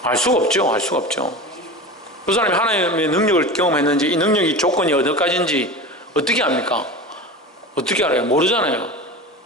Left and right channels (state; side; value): normal; both; correlation 0.30